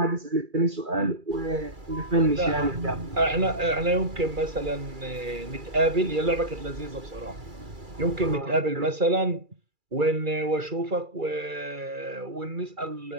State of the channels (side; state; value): left; late; 2.3 ms